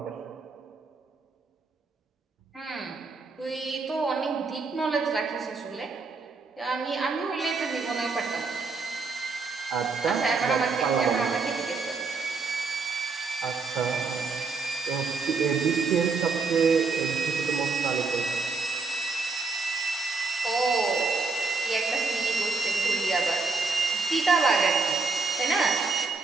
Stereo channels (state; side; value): quieter; left; 4.3 dB